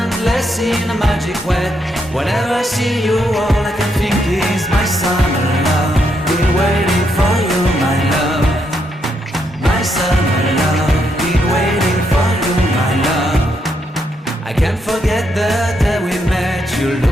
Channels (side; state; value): both; normal; correlation 0.78